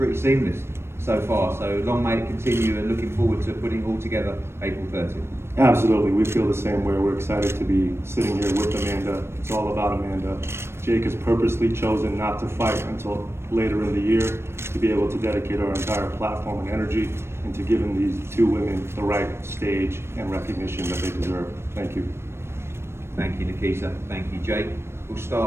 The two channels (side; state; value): left; late; 0.12 ms